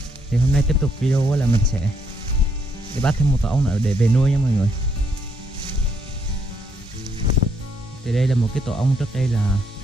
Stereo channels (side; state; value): both; normal; correlation 0.73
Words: Thì hôm nay tiếp tục video là mình sẽ đi bắt thêm một tổ ong nữa để về nuôi nha mọi người. Thì đây là một cái tổ ong trước đây là